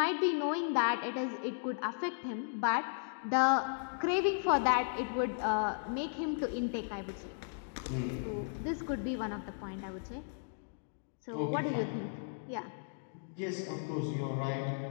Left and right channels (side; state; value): right; silent; digital silence